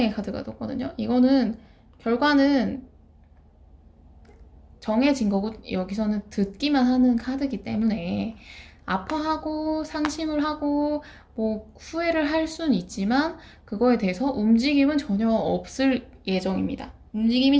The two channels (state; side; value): identical; both; correlation 1.00